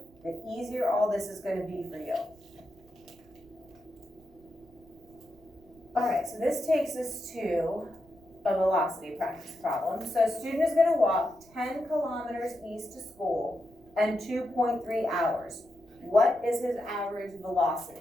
the easier all this is going to be for you. All right, so this takes us to a velocity practice problem. So a student is going to walk 10 kilometers east to school in 2.3 hours. What is his average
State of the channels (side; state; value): right; noise; rumble, 28 dB below the sound